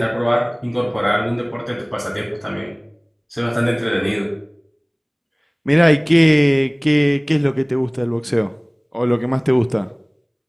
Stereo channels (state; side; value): identical; both; correlation 1.00